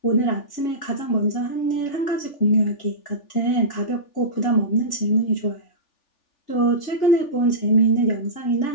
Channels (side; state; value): right; late; 3.4 ms